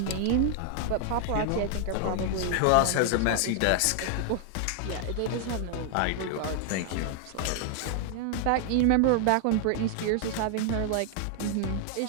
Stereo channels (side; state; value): both; different; correlation 0.00